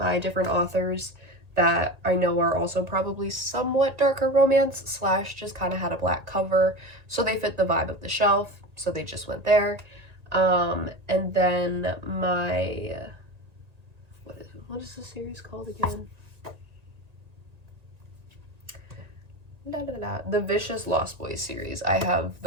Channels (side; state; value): left; late; 1.8 ms